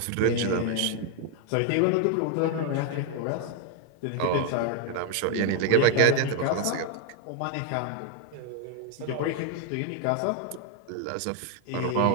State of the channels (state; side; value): different; both; correlation 0.00